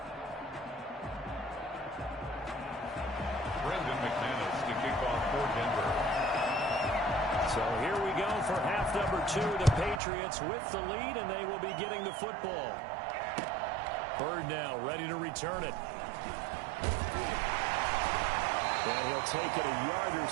Brendan McManus to kick off for Denver. So here we go for half number 2. The Patriots with the lead, and they will be getting the football. Byrd now ready to return it. And he'll take it a yard or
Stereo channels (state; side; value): drops out; left; at 10.0 s